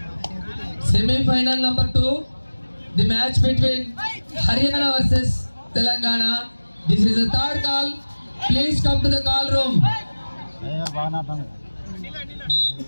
Semi-final number 2. The match between Haryana versus Telangana. This is the third call. Please come to the call room.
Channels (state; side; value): inverted; both; correlation -1.00